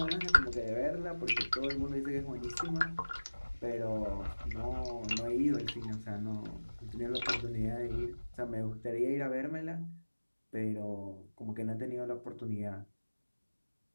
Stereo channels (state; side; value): inverted; both; correlation -1.00